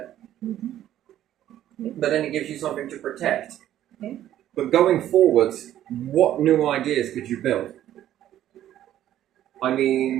Mm-hmm. Yeah. But then it gives you something to protect. Yeah. But going forwards, what new ideas could you build? I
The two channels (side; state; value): left; quieter; 12.1 dB